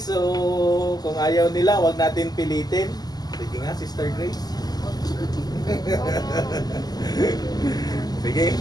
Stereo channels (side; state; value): right; late; 0.19 ms